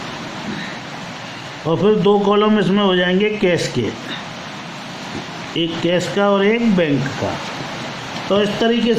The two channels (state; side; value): identical; both; correlation 1.00